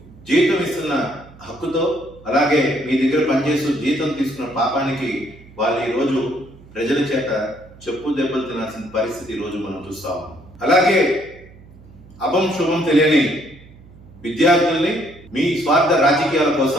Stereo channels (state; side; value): noise; right; hum, 23 dB below the sound